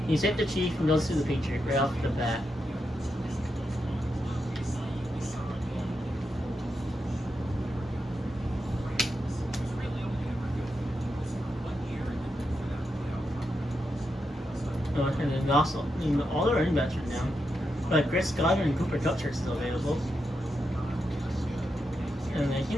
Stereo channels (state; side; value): normal; both; correlation 0.85